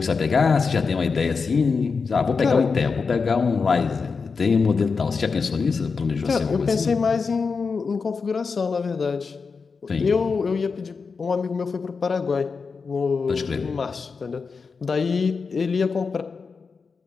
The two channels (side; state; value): right; quieter; 5.0 dB